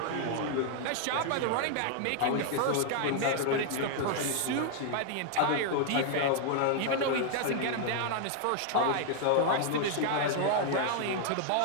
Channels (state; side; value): different; both; correlation 0.00